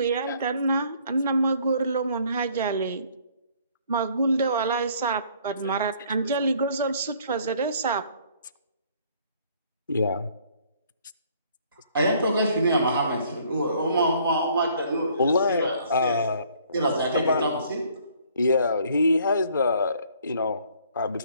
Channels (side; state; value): both; inverted; correlation -0.60